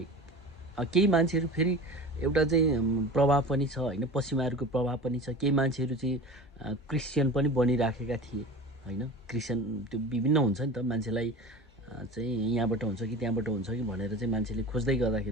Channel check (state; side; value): normal; both; correlation 0.35